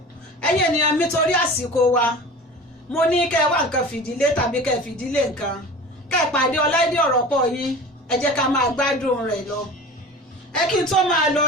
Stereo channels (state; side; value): normal; both; correlation 0.37